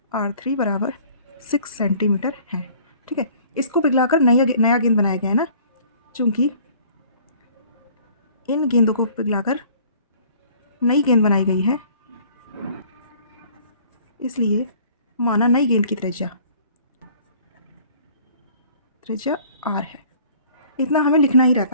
R3 बराबर 6 सेंटीमीटर है, ठीक है। इसको पिघलाकर नया गेंद बनाया गया है ना, चूँकि इन गेंदों को पिघलाकर नई गेंद बनाई गई है, इसलिए माना नई गेंद की त्रिज्या R है। इतना हमें लिखना ही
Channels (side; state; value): both; inverted; correlation -0.53